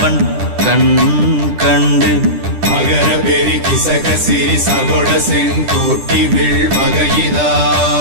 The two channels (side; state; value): left; late; 10 ms